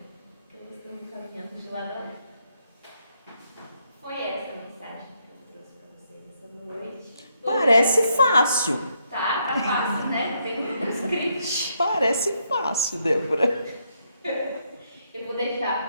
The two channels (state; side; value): inverted; both; correlation -0.76